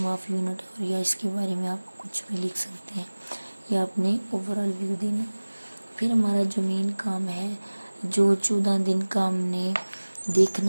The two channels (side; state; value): both; inverted; correlation -1.00